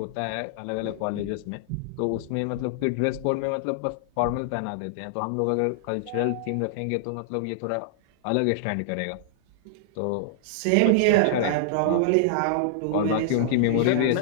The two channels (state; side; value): different; both; correlation -0.01